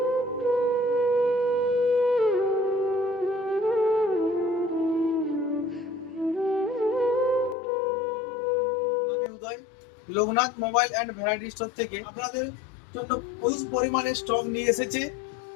আমি Uday, Loknath mobile and variety store থেকে আপনাদের জন্য প্রচুর পরিমাণে স্টক নিয়ে এসেছে।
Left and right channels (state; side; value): drops out; right; at 7.6 s